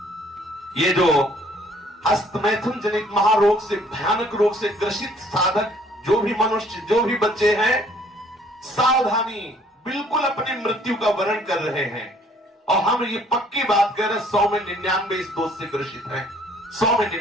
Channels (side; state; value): both; normal; correlation 0.60